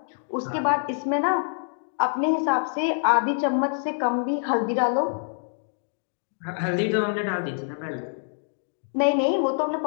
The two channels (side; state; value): right; silent; digital silence